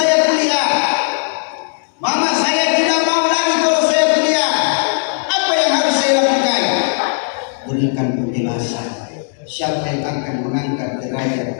kuliah. Mama saya tidak mau lagi kalau saya kuliah. Apa yang harus saya lakukan? Berikan penjelasan. Siapa yang akan mengangkat derajat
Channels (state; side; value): silent; right; 67 dB below the other